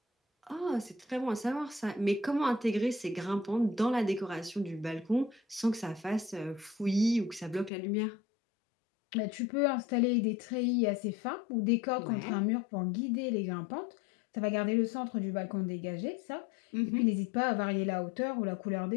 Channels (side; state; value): right; drops out; at 7.7 s